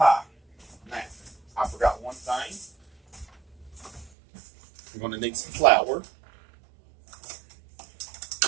Now, I forgot one thing. I'm going to need some flour.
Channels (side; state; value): left; drops out; at 4.1 s